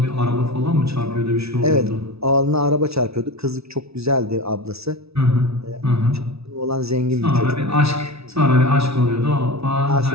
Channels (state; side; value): late; left; 0.79 ms